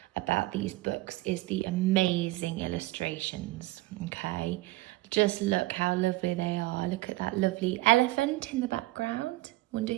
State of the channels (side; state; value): left; quieter; 19.2 dB